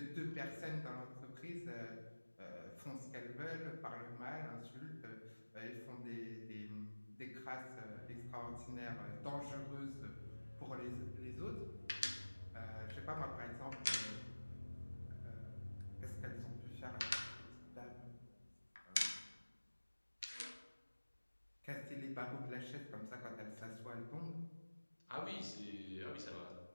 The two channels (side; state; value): both; inverted; correlation -1.00